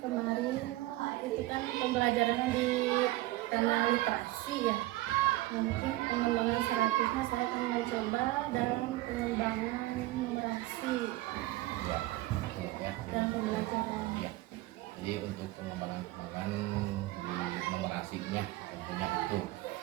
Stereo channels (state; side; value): quieter; left; 18.0 dB